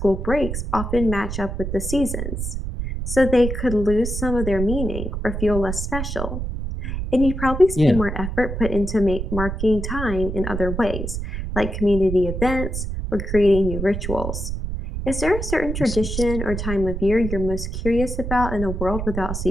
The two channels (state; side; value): noise; right; rumble, 4 dB below the sound